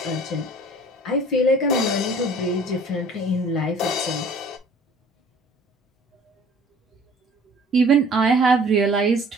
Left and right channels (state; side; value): normal; both; correlation 0.50